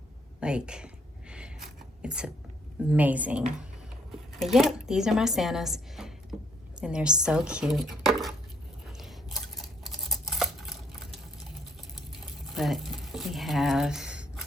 Like, it's amazing. But yep, these are my Santas. And they're so cute. But we have,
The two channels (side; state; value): both; normal; correlation 0.68